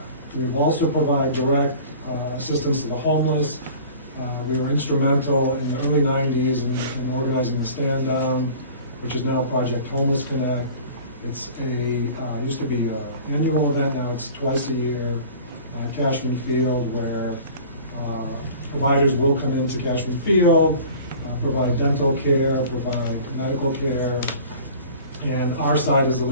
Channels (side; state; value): both; inverted; correlation -0.43